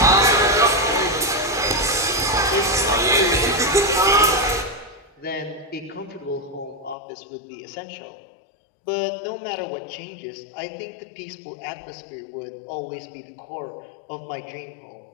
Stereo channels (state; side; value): drops out; right; at 7.0 s